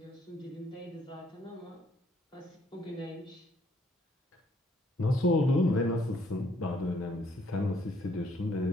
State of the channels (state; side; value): normal; both; correlation 0.67